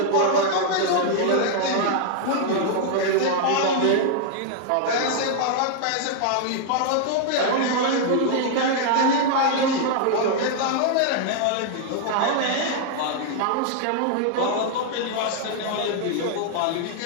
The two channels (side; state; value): both; different; correlation -0.01